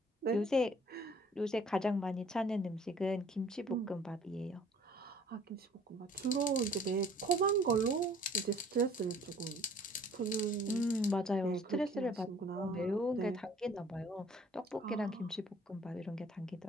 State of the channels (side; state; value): both; normal; correlation 0.55